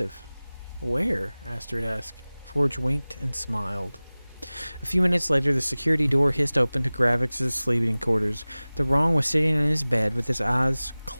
Where? Astrid asked. Forge winked and smiled. A few minutes later, the security door hissed open to Gravix's sleeping quarters. The Wrong was sitting in his bed with his eyes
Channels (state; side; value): inverted; both; correlation -0.99